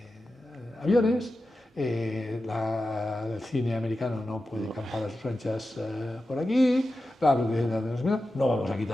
aviones, el cine americano no puede campar a sus anchas por aquí, no vamos a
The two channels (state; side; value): normal; both; correlation 0.92